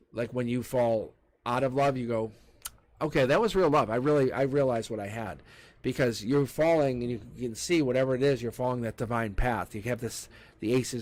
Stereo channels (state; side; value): identical; both; correlation 1.00